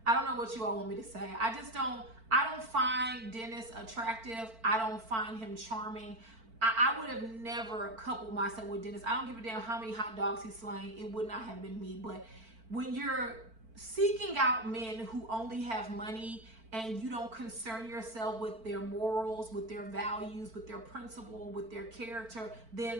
you all want me to say. I don't find Dennis attractive. I don't find him charming. I would have never coupled myself with Dennis. I don't give a damn how many hot dogs he's slaying. It would not have been me. But when you're seeking out men who only have money and you don't concern yourself with their morals, with their values, with their principle, with their character,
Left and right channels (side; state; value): left; late; 4.5 ms